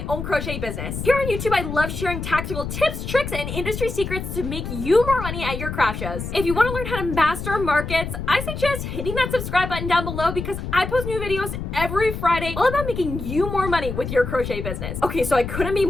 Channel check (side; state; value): left; noise; rumble, 6 dB below the sound